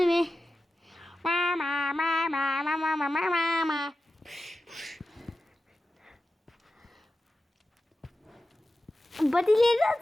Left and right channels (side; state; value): both; normal; correlation 0.93